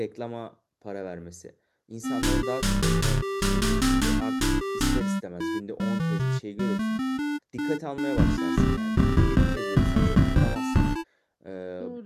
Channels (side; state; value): both; identical; correlation 1.00